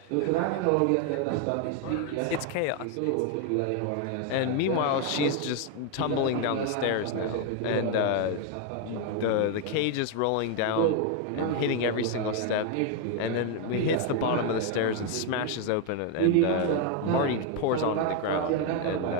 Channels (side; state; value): both; different; correlation 0.01